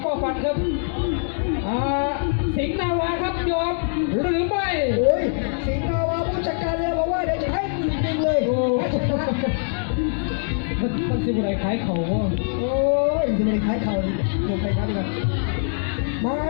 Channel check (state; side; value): silent; right; 63 dB below the other